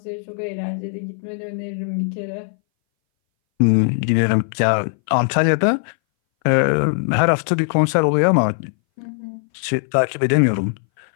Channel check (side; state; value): right; silent; 61 dB below the other